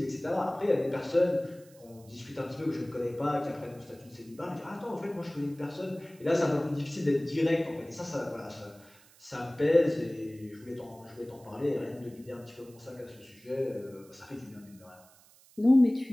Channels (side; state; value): right; noise; hiss, 26 dB below the sound